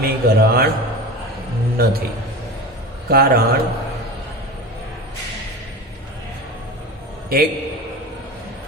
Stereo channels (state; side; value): normal; both; correlation 0.30